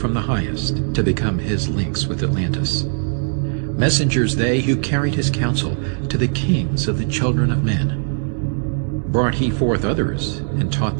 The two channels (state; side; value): silent; left; 66 dB below the other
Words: the highest to become his links with Atlantis. Messengers they who carried his counsel to the kings of the children of men. Brought he forth others and taught